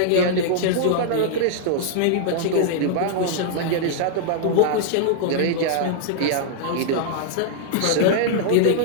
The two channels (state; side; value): different; both; correlation -0.01